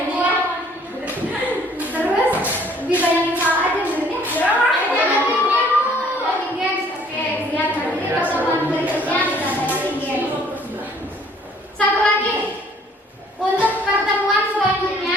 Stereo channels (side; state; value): both; normal; correlation 0.59